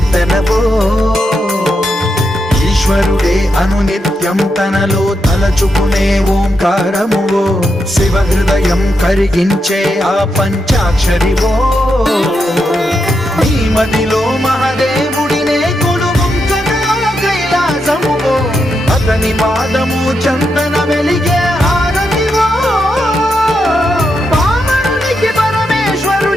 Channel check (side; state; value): both; normal; correlation 0.84